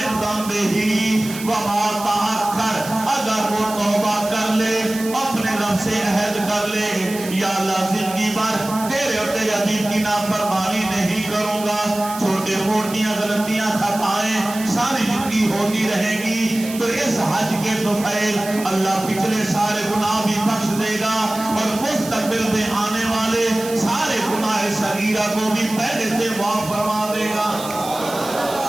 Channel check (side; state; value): right; noise; hiss, 12 dB below the sound